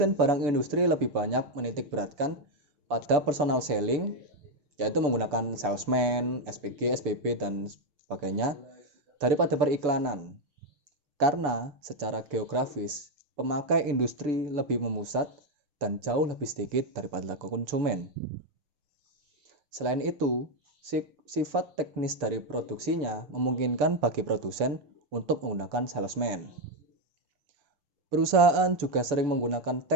barang industri lebih banyak menitik beratkan pada personal selling, yaitu menggunakan salesman, SPG, SPB, dan sebagainya, daripada periklanan. Karena secara geografis, pemakai industri lebih memusat dan jauh lebih sedikit daripada konsumen. Selain itu, sifat teknis dari produksinya memungkinkan bagi produsen untuk menggunakan salesman. Perusahaan juga sering menggunakan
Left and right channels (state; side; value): late; left; 6.8 ms